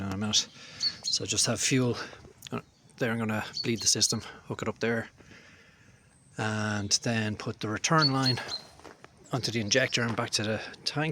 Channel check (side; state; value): both; identical; correlation 1.00